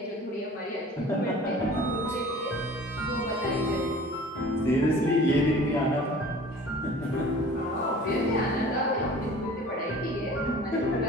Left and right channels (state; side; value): normal; both; correlation 0.45